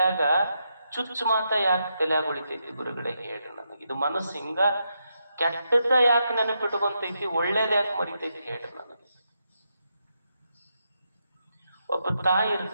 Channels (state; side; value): inverted; both; correlation -0.83